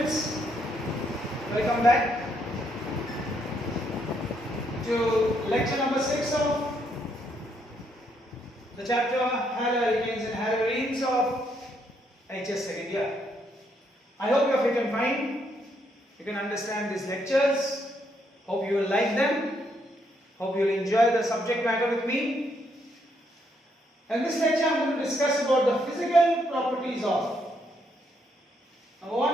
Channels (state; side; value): normal; both; correlation 0.74